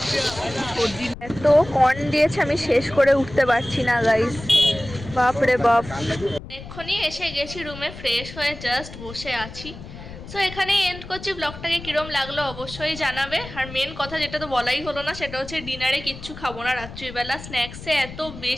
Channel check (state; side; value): noise; left; rumble, 13 dB below the sound